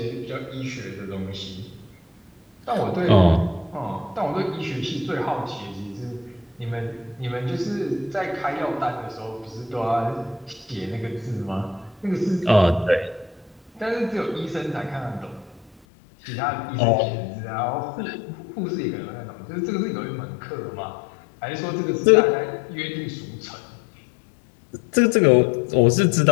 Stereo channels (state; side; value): drops out; right; at 15.7 s